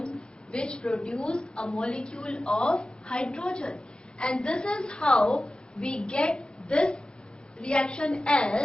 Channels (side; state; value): right; late; 0.050 ms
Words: which produce a molecule of hydrogen. And this is how we get this reaction